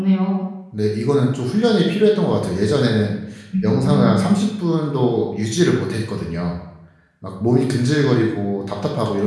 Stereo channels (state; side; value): identical; both; correlation 1.00